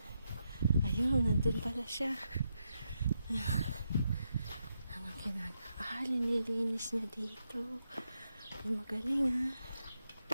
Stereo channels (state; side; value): inverted; both; correlation -0.83